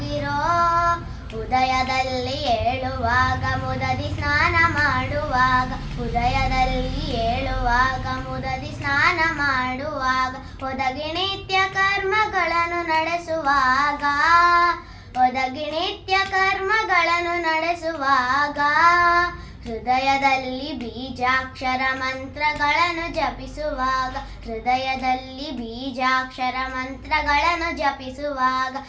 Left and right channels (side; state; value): both; identical; correlation 1.00